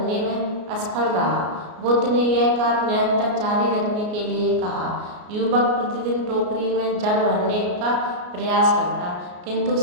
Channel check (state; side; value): late; left; 33 ms